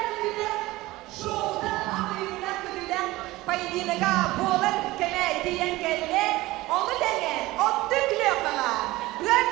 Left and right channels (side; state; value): left; quieter; 18.9 dB